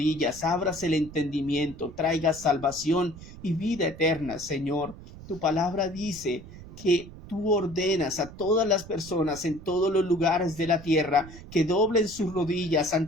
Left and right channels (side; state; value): right; noise; rumble, 16 dB below the sound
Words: abras el entendimiento, traigas salvación y vida eterna, Señor. Tu palabra dice que tú ordenas a todas las personas en todos los lugares de la tierra que doblen sus rodillas